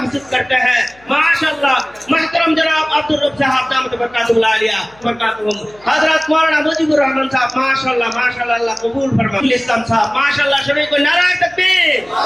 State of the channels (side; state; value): left; noise; hum, 28 dB below the sound